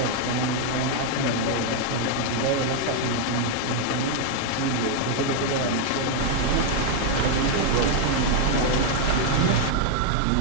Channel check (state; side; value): different; both; correlation 0.00